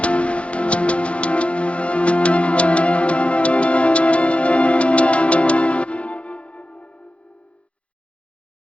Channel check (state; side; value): late; right; 0.061 ms